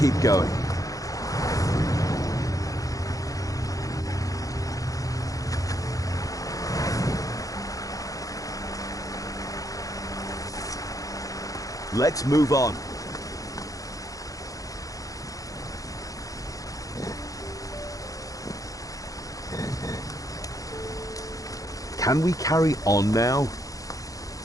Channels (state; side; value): late; right; 0.17 ms